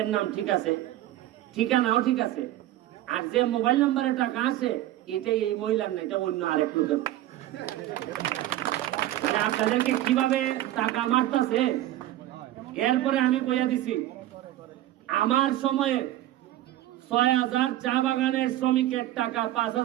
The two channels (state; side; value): quieter; left; 14.2 dB